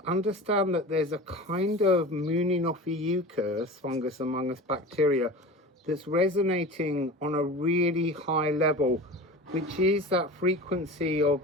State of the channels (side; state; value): both; normal; correlation 0.33